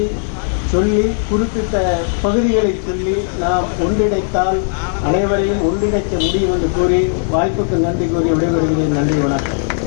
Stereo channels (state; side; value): silent; right; 64 dB below the other